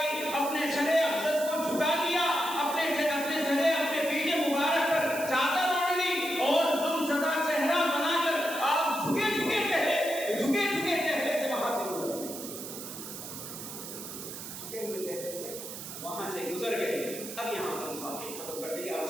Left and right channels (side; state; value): right; noise; hiss, 10 dB below the sound